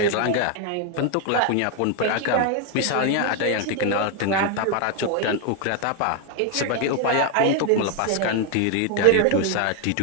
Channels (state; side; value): different; both; correlation 0.00